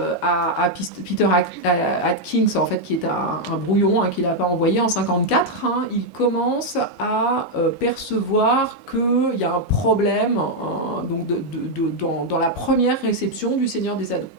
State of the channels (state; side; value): late; right; 3.7 ms